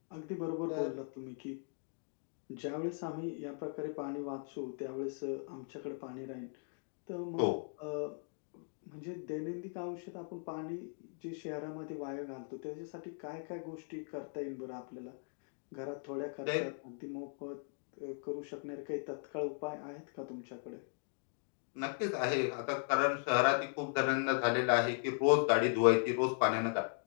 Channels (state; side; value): silent; right; 52 dB below the other